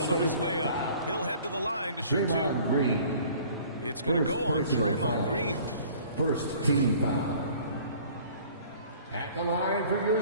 on his way up. He'll head to the line to shoot 2. Green. It's going to go on Draymond Green. First team foul. At the line for your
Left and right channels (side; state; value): both; inverted; correlation -0.51